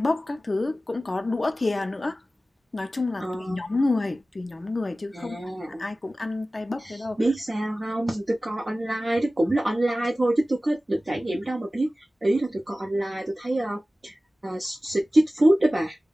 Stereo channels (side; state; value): both; normal; correlation 0.96